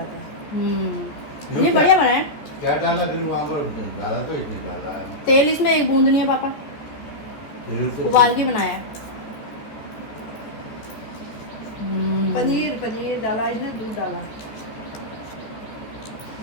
ये बढ़िया बना है। क्या डाला फिर वहाँ पर? डाला तो इसमें डाला है तेल इसमें एक बूंद नहीं है पापा, तेल से। उबाल के बनाया है। पनीर डाला इसने, दूध डाला।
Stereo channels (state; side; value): late; right; 14 ms